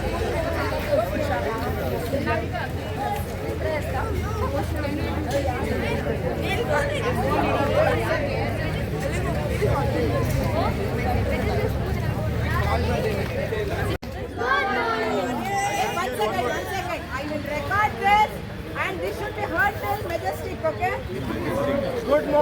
I will record this and this should be heard till Majestic, okay? Good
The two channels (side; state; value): both; identical; correlation 1.00